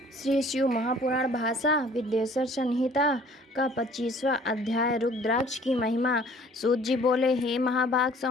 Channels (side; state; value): both; normal; correlation 0.53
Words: श्री शिव महापुराण भाषा विद्येश्वर संहिता का 25वां अध्याय रुद्राक्ष की महिमा। सूत जी बोले, हे महाभाग